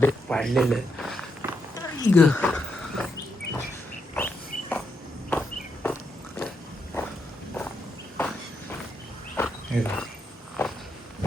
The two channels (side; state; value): both; normal; correlation 0.80